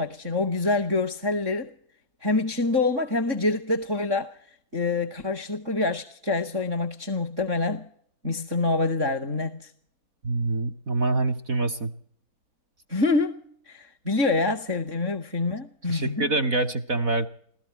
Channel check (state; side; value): late; left; 3.6 ms